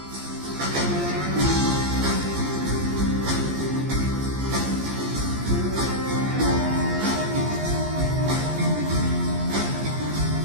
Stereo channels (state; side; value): late; left; 14 ms